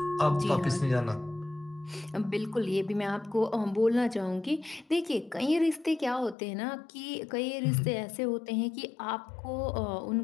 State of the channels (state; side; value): drops out; right; at 6.4 s